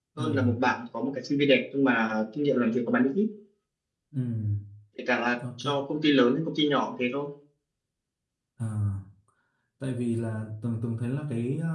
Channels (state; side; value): identical; both; correlation 1.00